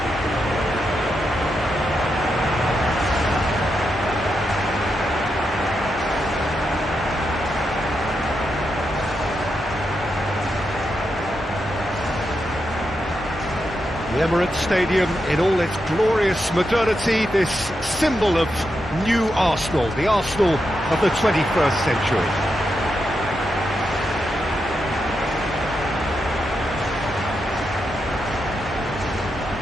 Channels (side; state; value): both; normal; correlation 0.85